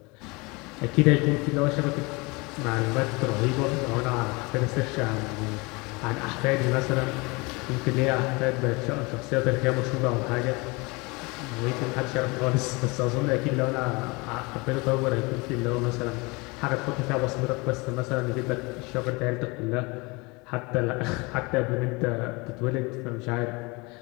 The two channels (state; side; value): quieter; right; 26.4 dB